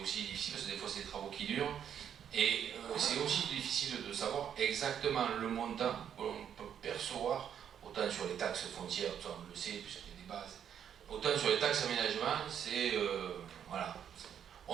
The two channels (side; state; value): left; quieter; 8.9 dB